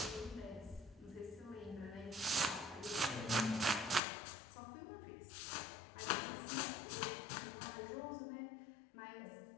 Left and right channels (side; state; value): right; drops out; at 4.0 s